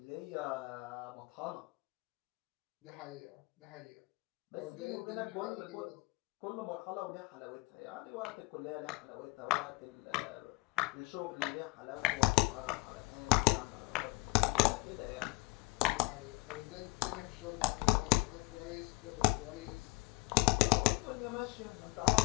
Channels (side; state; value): right; quieter; 25.8 dB